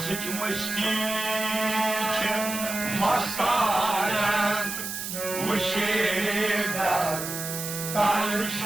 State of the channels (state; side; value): noise; right; hiss, 6 dB below the sound